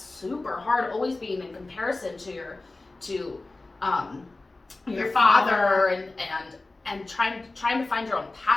super hard. Always being in comparison to your father and trying to find your own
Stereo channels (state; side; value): quieter; right; 3.2 dB